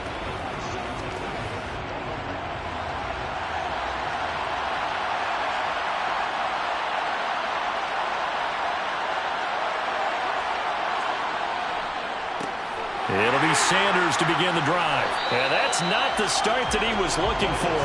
It'll be Sanders to begin the drive. And that's not the start that he was looking for,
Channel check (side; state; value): both; identical; correlation 1.00